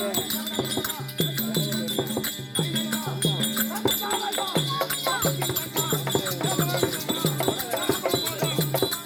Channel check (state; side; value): identical; both; correlation 1.00